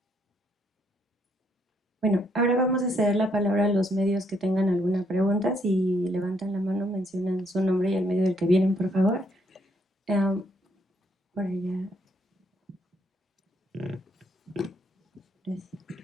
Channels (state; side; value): normal; both; correlation 0.72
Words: Bueno, ahora vamos a ceder la palabra a los medios que tengan alguna pregunta. Si levantan la mano, mencionan su nombre y el medio del que vienen, por favor. Por allá. Gracias.